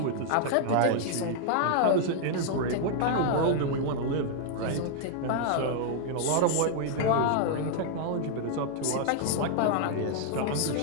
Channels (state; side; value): different; both; correlation -0.01